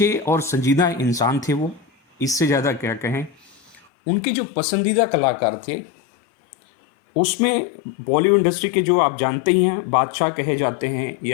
और संजीदा इंसान थे वो, इससे ज़्यादा क्या कहें। उनके जो पसंदीदा कलाकार थे उसमें बॉलीवुड इंडस्ट्री के जो आप जानते ही हैं बादशाह कहे जाते हैं,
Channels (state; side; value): drops out; right; at 3.8 s